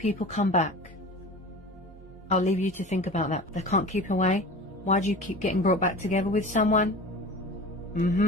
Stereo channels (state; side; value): normal; both; correlation 0.36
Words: come back? I'll leave you to think about that. They can't keep away. Why do you keep getting brought back together with someone?